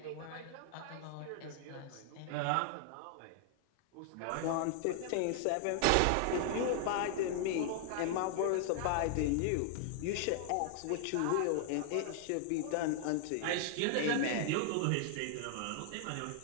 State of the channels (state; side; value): different; both; correlation 0.00